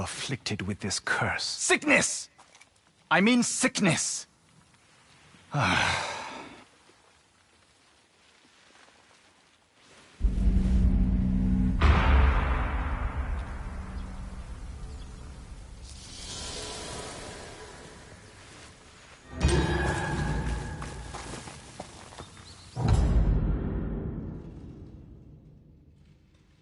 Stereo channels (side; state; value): both; identical; correlation 1.00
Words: with this curse. Sickness! I mean sickness!